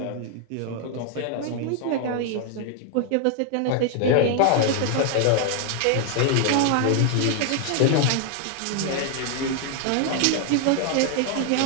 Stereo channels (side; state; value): both; different; correlation 0.00